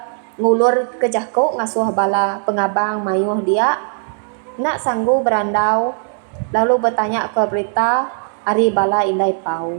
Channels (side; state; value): left; silent; digital silence